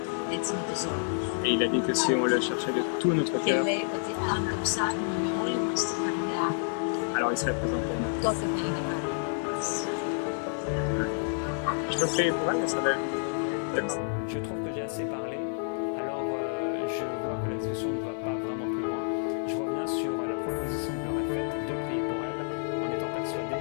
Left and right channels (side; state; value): right; silent; digital silence